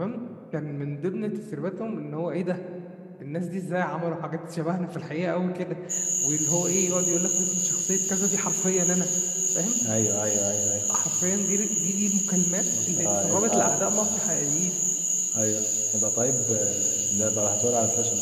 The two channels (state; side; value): identical; both; correlation 1.00